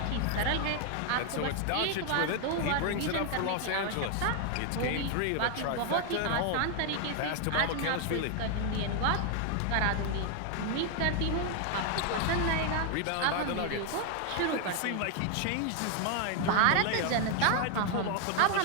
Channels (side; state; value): both; different; correlation 0.00